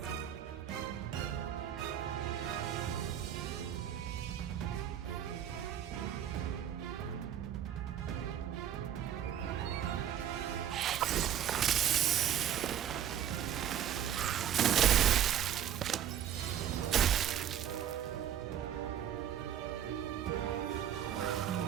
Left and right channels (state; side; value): quieter; left; 10.2 dB